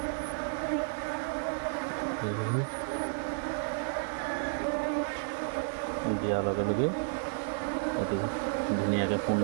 দিয়াৰ লগে লগে অতি ধুনীয়াকৈ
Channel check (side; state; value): left; silent; digital silence